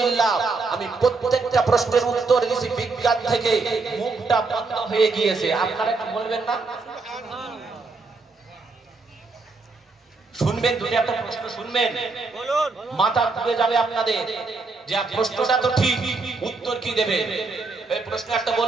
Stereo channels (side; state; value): left; quieter; 3.9 dB